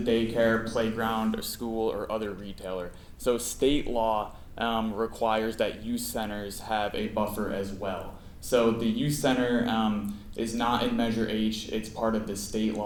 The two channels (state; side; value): identical; both; correlation 1.00